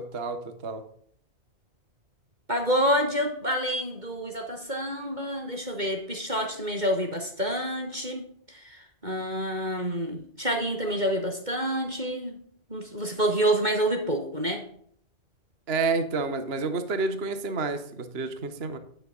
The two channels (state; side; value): late; left; 2.2 ms